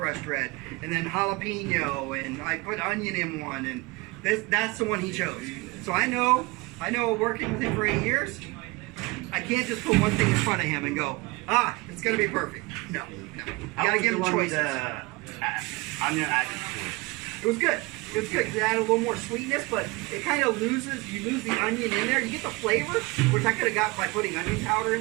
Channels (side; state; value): left; quieter; 24.1 dB